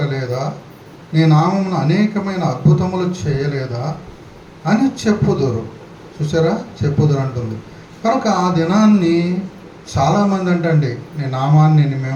నీ నామమును అనేకమైన అద్భుతములు చేయలేదా అని చెప్పుదురు. చూసారా, చెప్పుదురు అంటుంది. కనుక ఆ దినాన్ని చాలామంది అంటండి, నీ నామాన్ని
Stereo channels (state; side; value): identical; both; correlation 1.00